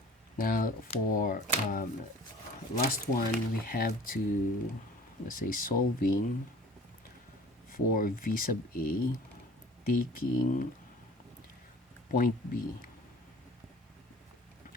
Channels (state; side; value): normal; both; correlation 0.47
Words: Now for last one, we have to, let's say, solving for V sub A, taking point B